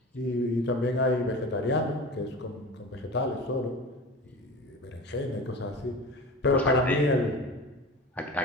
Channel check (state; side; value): normal; both; correlation 0.33